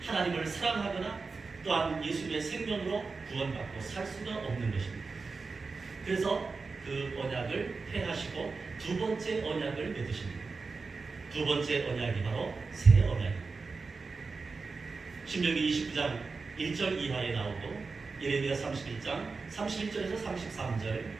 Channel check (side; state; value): left; quieter; 4.3 dB